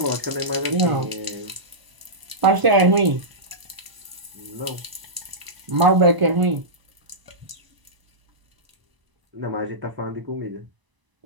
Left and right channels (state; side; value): late; left; 1.0 ms